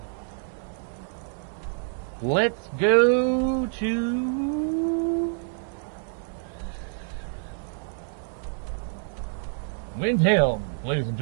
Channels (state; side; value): silent; left; 60 dB below the other